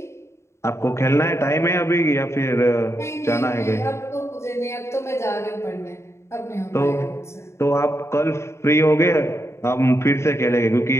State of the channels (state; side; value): late; right; 0.13 ms